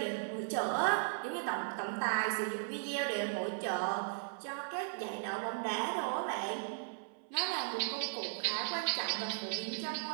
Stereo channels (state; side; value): silent; left; 53 dB below the other